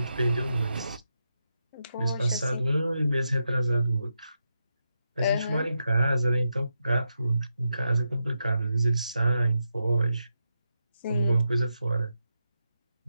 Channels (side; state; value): both; inverted; correlation -0.86